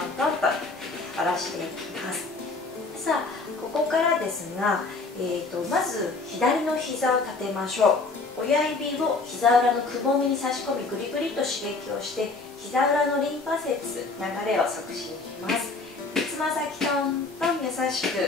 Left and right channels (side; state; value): right; quieter; 3.7 dB